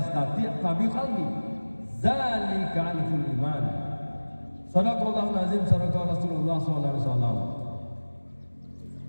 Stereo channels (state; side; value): inverted; both; correlation -1.00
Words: fa bi qalbihi, dzalika al-ful iman. Sadaqallahu azim, sadaqa Rasulullah sallallahu alaihi wasallam.